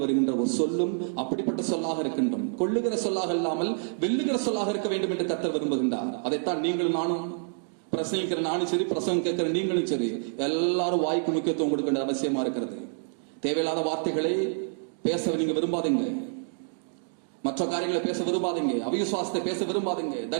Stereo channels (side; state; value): left; silent; digital silence